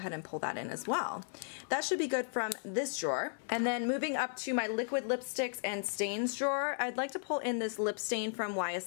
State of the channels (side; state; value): right; silent; 54 dB below the other